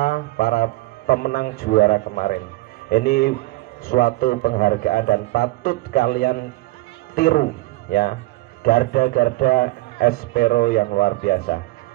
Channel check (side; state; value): left; quieter; 19.7 dB